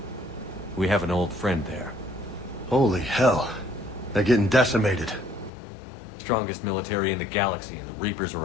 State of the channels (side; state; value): right; drops out; at 5.5 s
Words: We have an old friend there. Holy hell. They're getting decimated. Strongest military in the galaxy, and the Reapers are